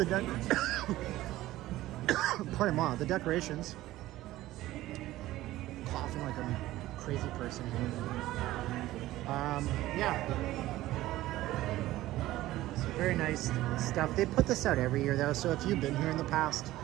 the decorations. Coughing like a crazy person here. Yeah. So very nice stuff. They put this out every year though, so if you've been here in the past,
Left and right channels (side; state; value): left; quieter; 16.1 dB